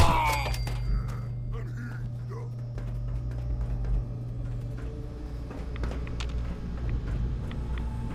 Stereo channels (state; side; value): identical; both; correlation 1.00